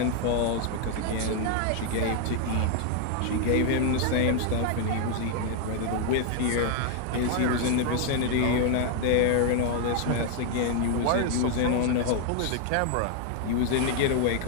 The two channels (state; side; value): different; both; correlation 0.00